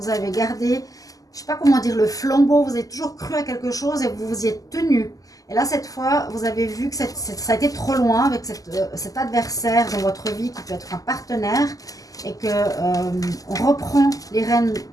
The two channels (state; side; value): late; right; 0.17 ms